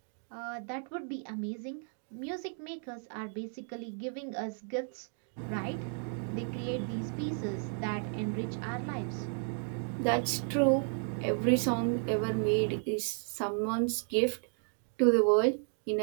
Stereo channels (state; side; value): silent; left; 55 dB below the other